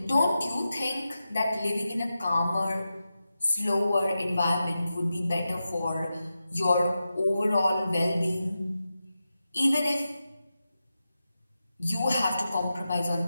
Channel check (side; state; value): both; inverted; correlation -0.91